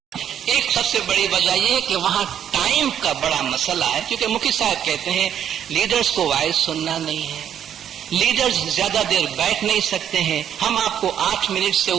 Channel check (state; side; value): quieter; left; 9.5 dB